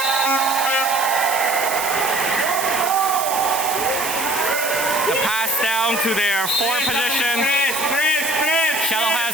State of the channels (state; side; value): noise; right; hiss, 5 dB below the sound